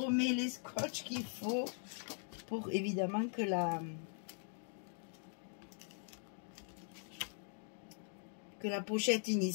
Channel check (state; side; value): silent; right; 50 dB below the other